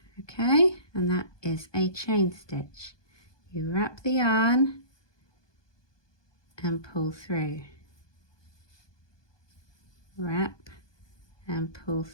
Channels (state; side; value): late; right; 1.2 ms